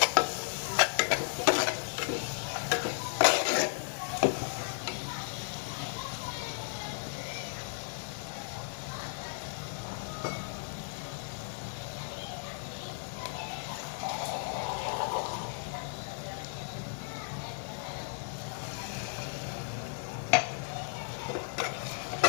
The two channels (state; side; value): silent; right; 55 dB below the other